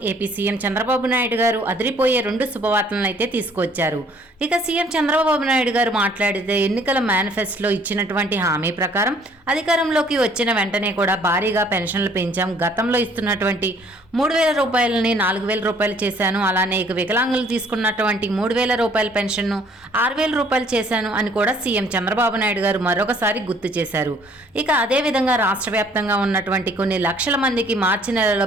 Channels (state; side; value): normal; both; correlation 0.60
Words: ఏపీ సీఎం చంద్రబాబు నాయుడు గారు అదిరిపోయే 2 శుభవార్తలను అయితే తీసుకొచ్చారు. ఇక సీఎం చంద్రబాబు నాయుడు గారు మాట్లాడితే ఎన్నికల మేనిఫెస్టోలో ఇచ్చినటువంటి హామీ ప్రకారం అధికారంలోకి వచ్చిన వెంటనే కూడా భారీగా పెన్షన్లు పెంచాం. గతంలో ఇస్తున్నటువంటి 3,000 రూపాయలని 4,000 రూపాయలు చేశాను. అలానే ఇక వికలాంగులు తీసుకున్నటువంటి 3,000 రూపాయల పెన్షన్ను 6,000 రూపాయలు చేశాను అని కూడా సీఎం చంద్రబాబు నాయుడు గారు మరొకసారి గుర్తు చేశారు. ఇక అదేవిధంగా రాష్ట్ర వ్యాప్తంగా ఉన్నటువంటి కొన్ని లక్షల మందికి మార్చి నెలలో